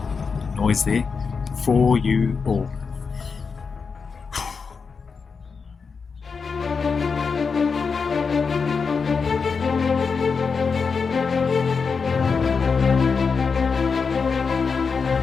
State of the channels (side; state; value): right; quieter; 5.3 dB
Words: Always there for you all.